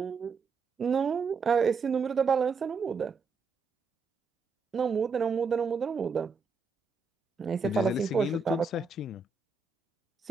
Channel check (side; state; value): left; quieter; 4.7 dB